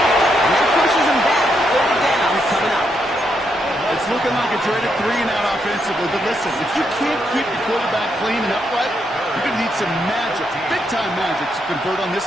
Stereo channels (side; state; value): both; normal; correlation 0.79